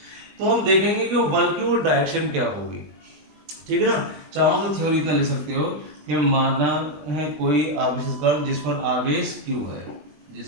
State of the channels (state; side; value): late; left; 20 ms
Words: तो हम देखेंगे कि वो बल की वो डायरेक्शन क्या होगी, ठीक है ना। चाहो तो थ्योरी इतना लिख सकते हो कि माना है कोई आवेशित कण जिस पर आवेश Q है,